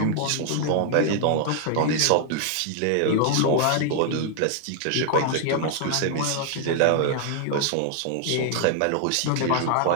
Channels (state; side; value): different; both; correlation 0.00